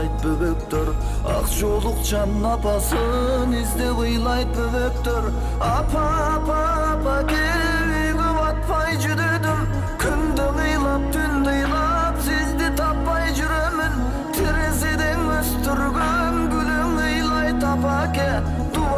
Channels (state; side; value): identical; both; correlation 1.00